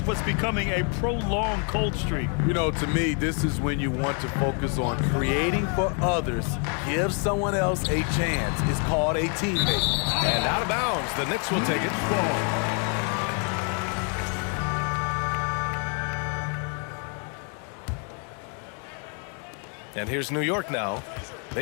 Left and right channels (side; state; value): right; quieter; 39.6 dB